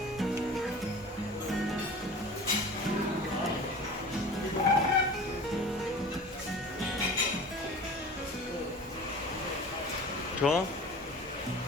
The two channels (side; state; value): both; normal; correlation 0.39